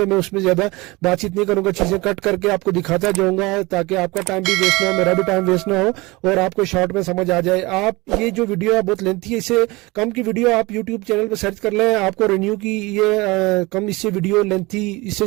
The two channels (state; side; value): quieter; left; 23.1 dB